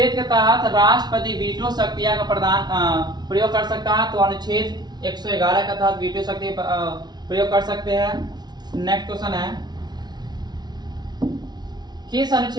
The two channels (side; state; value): left; late; 0.20 ms